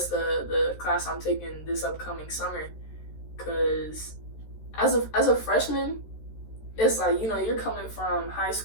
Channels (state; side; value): late; right; 13 ms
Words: the class I'm taking this upcoming summer. Cause as a freshman, it's like, you know, you're coming from high